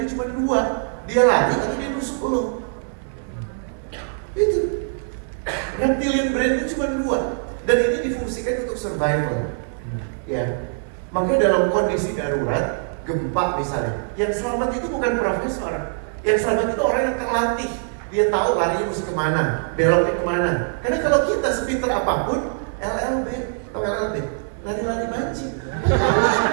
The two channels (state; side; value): silent; left; digital silence